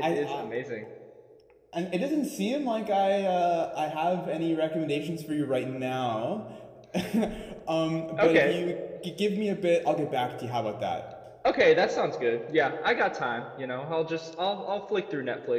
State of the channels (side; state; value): both; identical; correlation 1.00